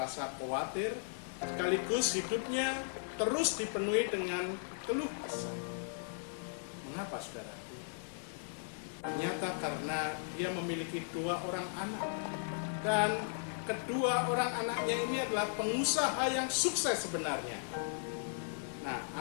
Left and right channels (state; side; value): silent; right; digital silence